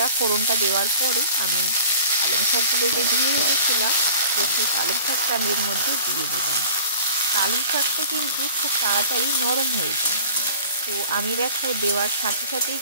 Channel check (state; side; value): inverted; both; correlation -0.42